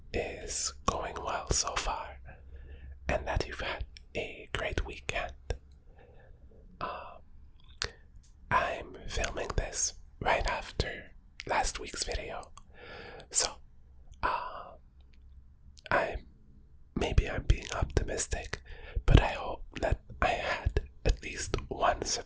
is going well so far and that you've had a great weekend. I'm filming this right after last week's video, so I'm being optimistic, but I hope that I had at least one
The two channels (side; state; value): both; identical; correlation 1.00